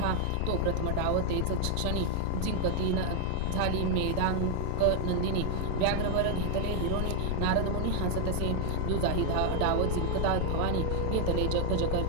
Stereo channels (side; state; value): both; different; correlation 0.00